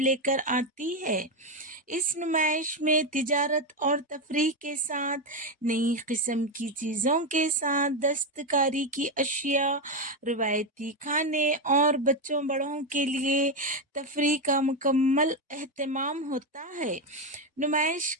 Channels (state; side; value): normal; both; correlation 0.09